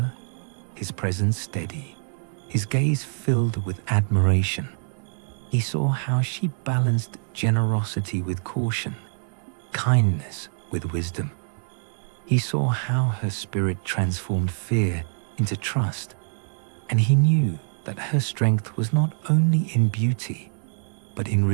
his presence steady, his gaze filled with admiration. He saw how she balanced generosity with caution, kindness with wisdom. He saw how her spirit transformed fear into trust, and he knew that her strength was not only in beauty, but in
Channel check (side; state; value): left; silent; digital silence